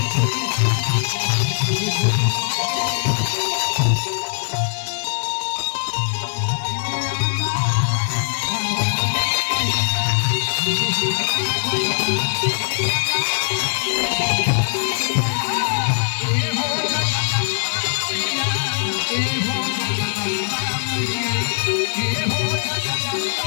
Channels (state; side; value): silent; right; digital silence